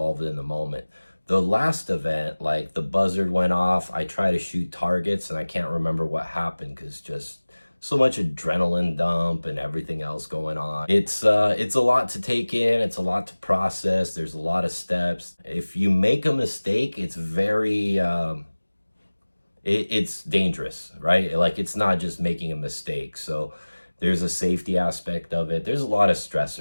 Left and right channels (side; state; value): both; inverted; correlation -1.00